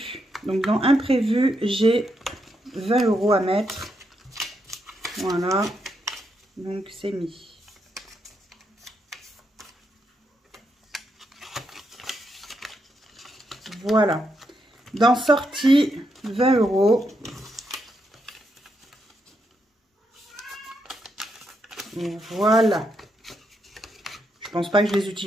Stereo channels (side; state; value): both; normal; correlation 0.81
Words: Donc, dans imprévu, j'ai 20 € à mettre. Voilà. Donc, c'est mis. Voilà. Dans sortie, 20 €. Et voilà. Je pense pas que je les